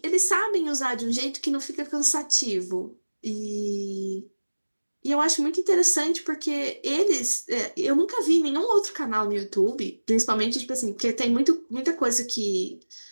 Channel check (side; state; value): both; inverted; correlation -1.00